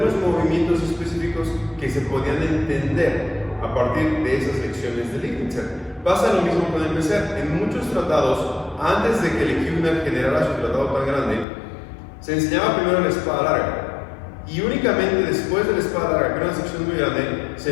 movimientos específicos que se podían entender a partir de esas lecciones de Liegnitzer. Pasa lo mismo con el Messer. En muchos tratados, antes de que Lecuhner generara su tratado tan grande, se enseñaba primero la espada larga. Y únicamente después de la espada larga, que era una sección muy grande,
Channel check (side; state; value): right; drops out; at 11.5 s